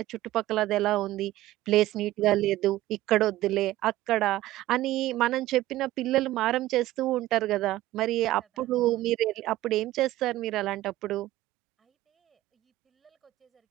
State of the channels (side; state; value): left; quieter; 15.9 dB